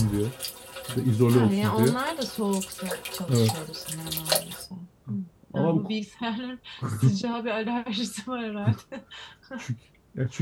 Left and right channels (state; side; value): identical; both; correlation 1.00